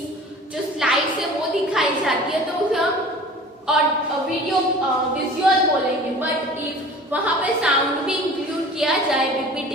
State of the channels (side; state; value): both; normal; correlation 0.43